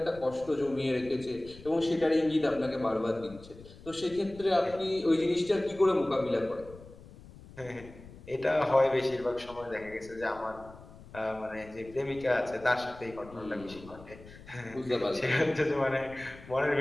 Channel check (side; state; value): left; noise; rumble, 19 dB below the sound